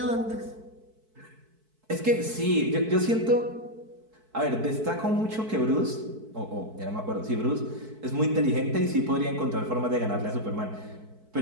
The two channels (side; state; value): left; late; 4.6 ms